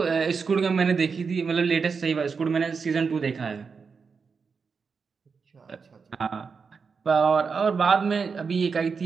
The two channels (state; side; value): quieter; left; 5.4 dB